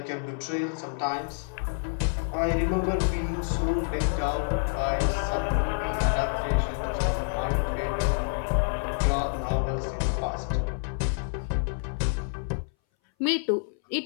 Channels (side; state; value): right; silent; 59 dB below the other